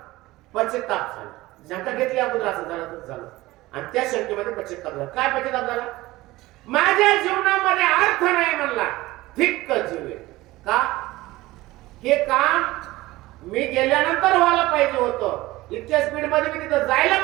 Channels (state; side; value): quieter; left; 18.7 dB